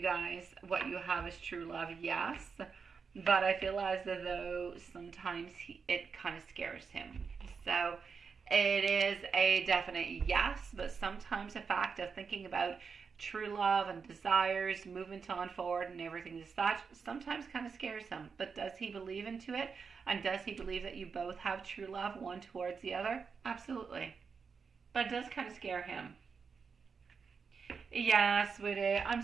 guys, what you have is true love? Yes. But I feel as though sometimes it kind of scares him. So it is a definite yes, but sometimes the fact of thinking about true love and desires, movement on forward and everything as such, sometimes kind of scares him. But does he believe into it? And does he believe that you both have true love, one towards the other? Absolutely. But it does kind of scare him. Yeah, sweetie. I'm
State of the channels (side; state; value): left; quieter; 5.6 dB